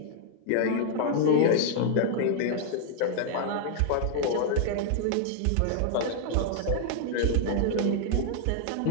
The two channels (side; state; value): both; different; correlation 0.00